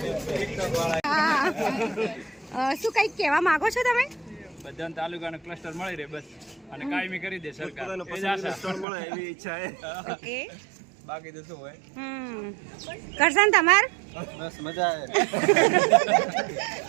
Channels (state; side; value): drops out; left; at 8.8 s